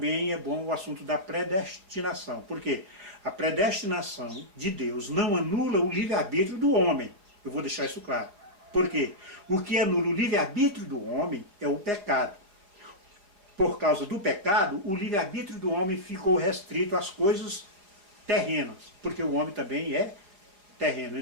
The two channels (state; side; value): late; left; 4.9 ms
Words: é bom o assunto da predestinação. Por quê? A predestinação de Deus não anula o livre-arbítrio do homem. Eu vou deixar isso claro. Por quê? O que anula o livre-arbítrio do homem é o pecado. Por causa do pecado, o livre-arbítrio do homem ficou restrito às coisas terrenas, porque o homem também é terreno.